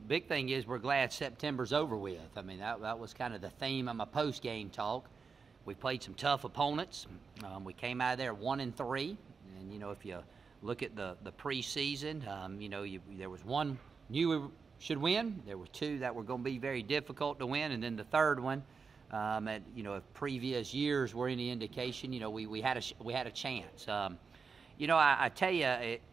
big thing is we're glad September's over with. I mean, that was kind of the theme of my post-game talk. We played some tough opponents. We came out of there 1-3, and if you look at the preseason, there was one knew we should win. There were two that were going to be very difficult to win, and then the third one, if previous years were any indication, we had a chance. I tell you,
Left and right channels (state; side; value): quieter; left; 5.2 dB